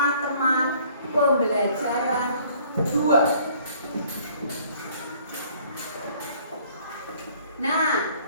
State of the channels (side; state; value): both; inverted; correlation -0.57